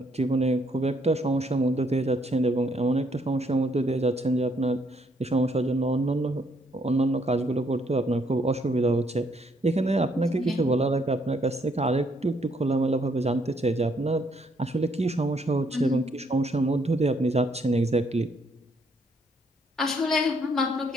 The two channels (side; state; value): both; normal; correlation 0.70